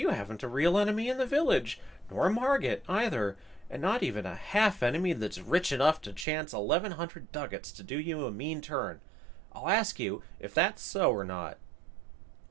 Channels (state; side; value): drops out; left; at 6.2 s